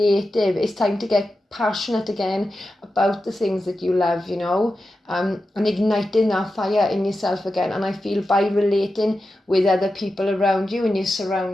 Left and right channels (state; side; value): normal; both; correlation 0.91